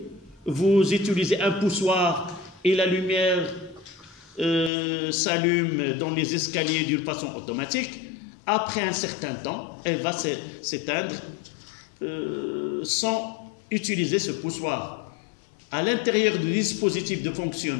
vous utilisez un poussoir et la lumière s'allume dans les escaliers d'une façon automatique. Après un certain temps, elle va s'éteindre sans utiliser ce poussoir. À l'intérieur du dispositif de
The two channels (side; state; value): right; drops out; at 4.7 s